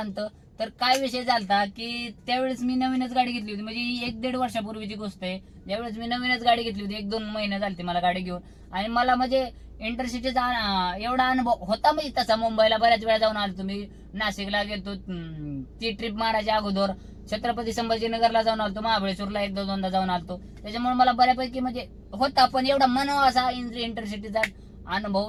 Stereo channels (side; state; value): both; identical; correlation 1.00